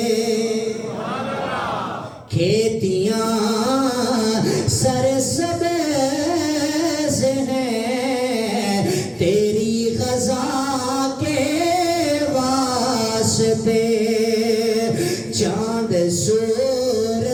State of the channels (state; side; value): identical; both; correlation 1.00